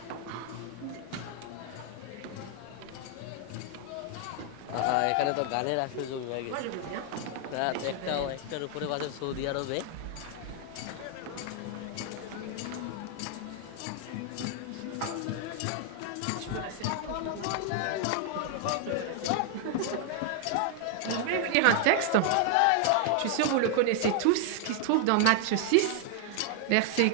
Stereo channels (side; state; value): both; different; correlation 0.00